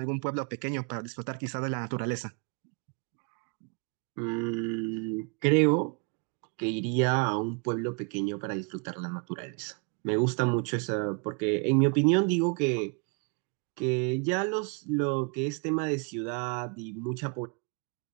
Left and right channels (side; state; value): left; quieter; 34.2 dB